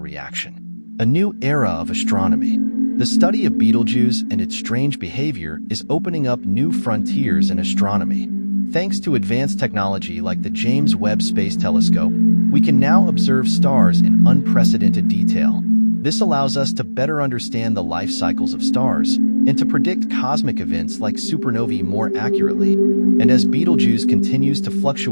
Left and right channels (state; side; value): inverted; both; correlation -1.00